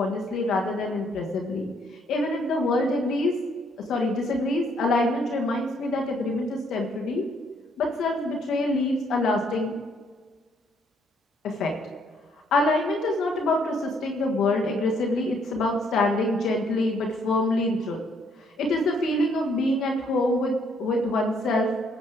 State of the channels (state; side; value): normal; both; correlation 0.68